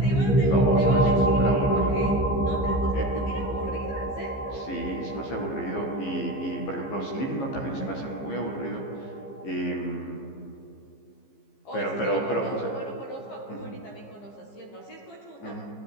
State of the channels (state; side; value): late; right; 15 ms